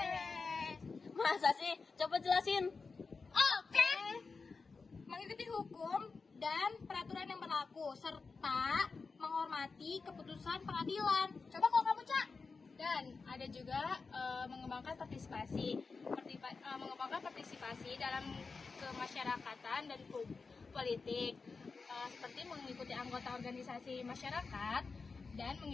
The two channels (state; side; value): quieter; right; 4.5 dB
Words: Masa sih? Coba jelasin. Oke. Mengikuti hukum dan peraturan yang berlaku serta menghormati keputusan pengadilan. Coba kalau kamu, Cak. Dan ada juga mengembangkan partisipasi. mengembangkan partisipasi dalam kemasyarakatan dan politik, seperti mengikuti anggota organisasi masyarakat dan